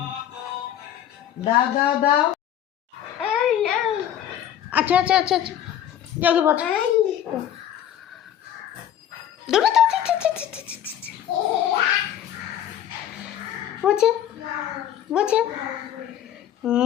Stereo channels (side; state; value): right; quieter; 10.8 dB